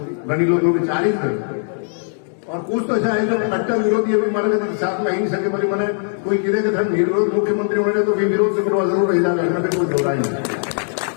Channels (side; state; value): right; silent; digital silence